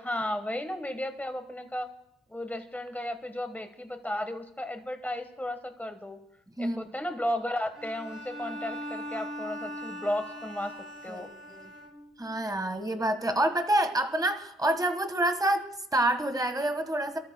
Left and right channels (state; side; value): normal; both; correlation 0.72